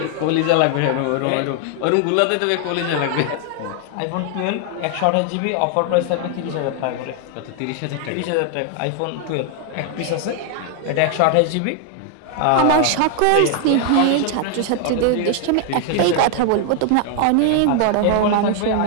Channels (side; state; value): both; different; correlation 0.00